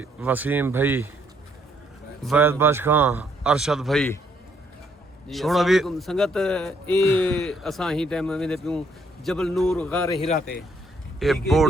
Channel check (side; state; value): both; normal; correlation 0.70